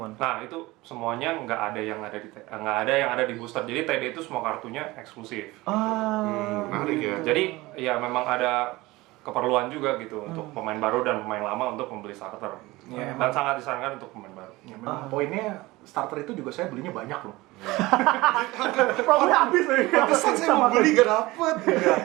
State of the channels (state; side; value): quieter; left; 20.4 dB